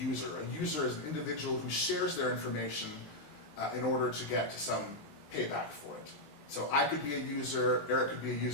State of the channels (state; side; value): late; right; 20 ms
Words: A user is an individual who shares their information in order to get some payback for it. So I could be a user, Eric could be a